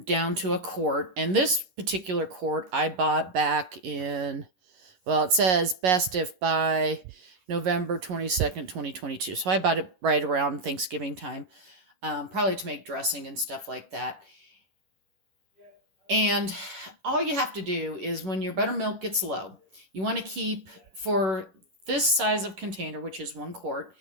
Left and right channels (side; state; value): left; late; 11 ms